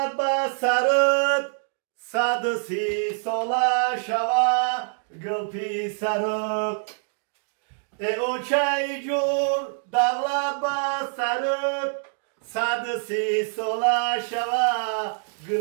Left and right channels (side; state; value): left; silent; digital silence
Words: به سرت 130 ساله شوه گل پیسرت. ای اوچه جون دولت به سرت 130 ساله شوه